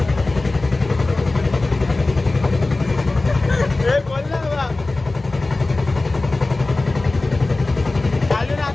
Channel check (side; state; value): right; quieter; 3.2 dB